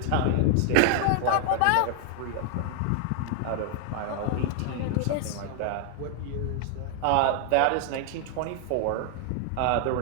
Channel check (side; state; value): both; different; correlation 0.00